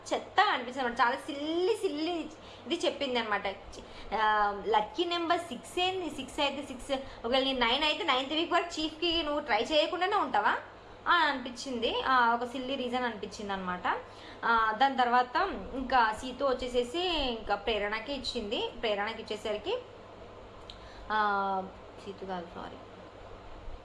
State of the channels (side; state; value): both; identical; correlation 1.00